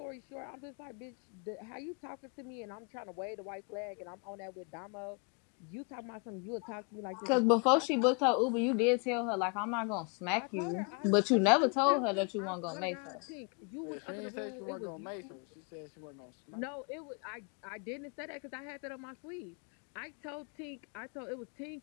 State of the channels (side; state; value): right; quieter; 34.3 dB